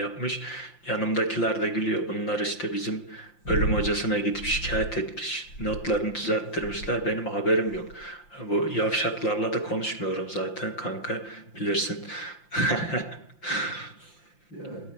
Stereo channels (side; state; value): right; late; 5.8 ms